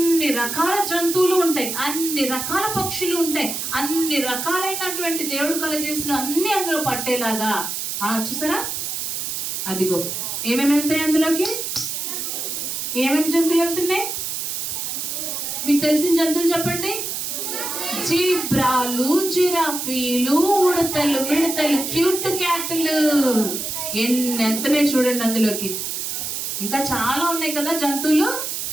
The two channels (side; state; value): right; noise; hiss, 3 dB below the sound